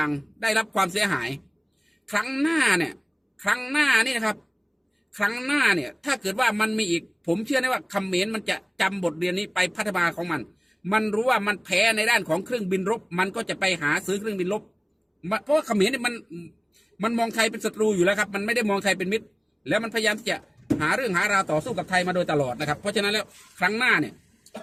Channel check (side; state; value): both; identical; correlation 1.00